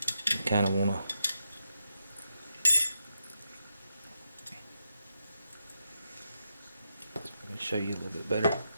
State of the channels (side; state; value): both; inverted; correlation -0.84